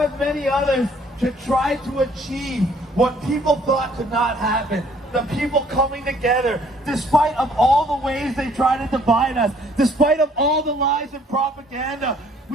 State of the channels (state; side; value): normal; both; correlation 0.61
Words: many others, to try to achieve what people thought could not happen. The people coming together, despite of all the ways they try to divide us, despite of all the lies and propaganda,